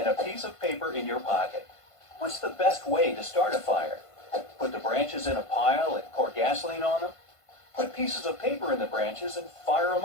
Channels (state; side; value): late; right; 1.5 ms